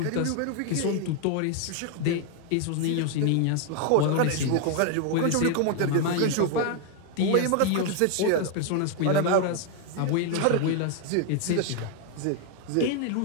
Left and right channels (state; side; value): different; both; correlation 0.01